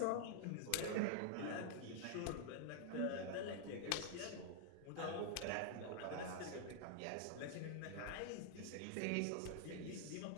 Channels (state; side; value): different; both; correlation 0.00